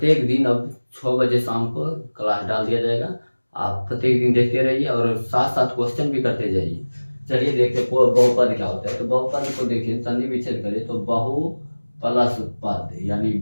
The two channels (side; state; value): both; inverted; correlation -1.00